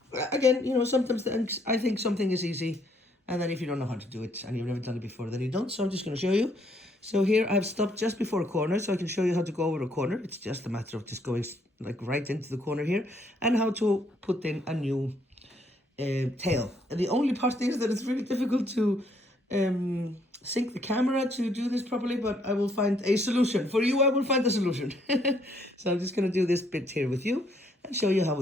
you know, sometimes I think something is easy, and then if you don't know how to do it and you've never done it before, then you don't. So I'm just going to show you. So here I've stopped just before a corner, so I can show you how to go over a corner. It's just a matter of just going like right into the corner here, and how to put in a new tail. And the only part is that it's really difficult to sync the camera to do this properly, but I will find a solution. For you, I will find a solution. So I'm just going to do this bit here with you and show you how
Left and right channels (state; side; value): normal; both; correlation 0.69